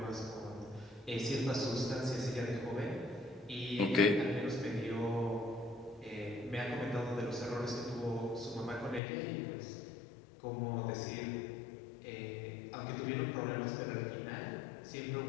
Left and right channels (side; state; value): right; drops out; at 9.0 s